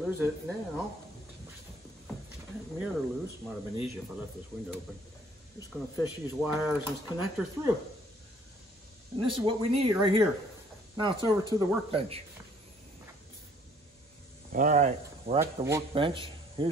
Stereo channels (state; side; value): normal; both; correlation 0.60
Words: lose it now. Mirror loose. Might have been easier if I left this window open. Just going to fish these wires and this connector through. And this is what we need right here. Now it's over to the workbench. All right, we're at the workbench.